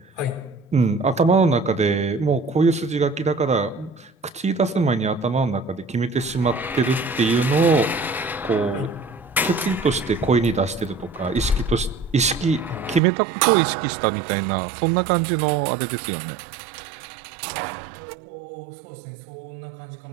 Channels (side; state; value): left; drops out; at 13.0 s